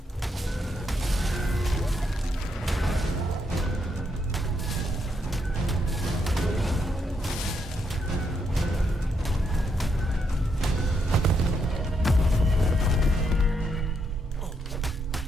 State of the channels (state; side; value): normal; both; correlation 0.78